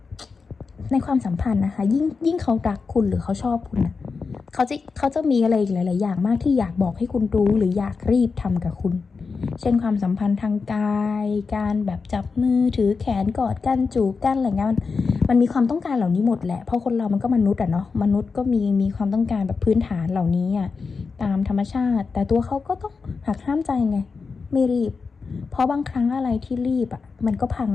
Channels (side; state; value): right; quieter; 4.8 dB